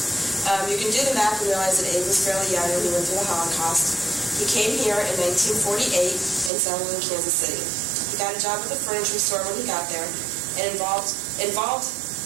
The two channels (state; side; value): drops out; left; at 6.5 s